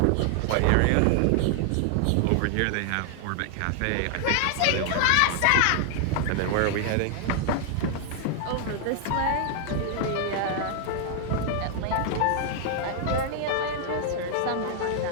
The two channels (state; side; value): different; both; correlation 0.00